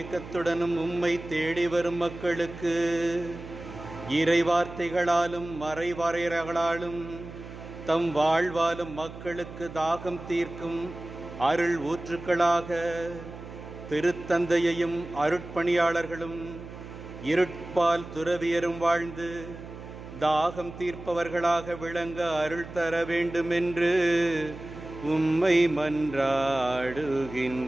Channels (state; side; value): noise; right; hum, 13 dB below the sound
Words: உம்மை தேடி வரும் மக்களுக்கு இறைவார்த்தைகளாலும் மறைவாரையர்களாலும் தம் வாழ்வாலும் மக்களுக்கு தாகம் தீர்க்கும் அருள் ஊற்றுக்களாக திருத்தந்தையையும் அருட்பணியாளர்களும் இருட்பால் துறவியரும் வாழ்ந்து தாகம் தீர்ப்பவர்களாக விளங்க அருள் தர வேண்டுமென்று உம்மை மன்றாடுகின்றோம்.